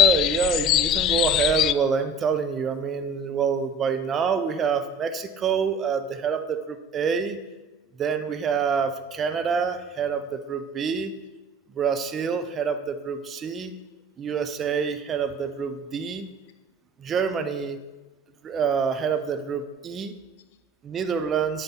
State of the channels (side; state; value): both; normal; correlation 0.44